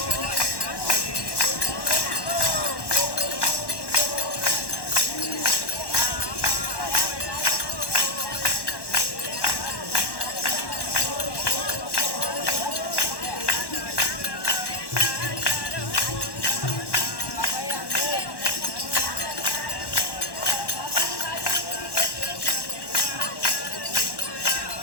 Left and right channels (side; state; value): right; late; 1.1 ms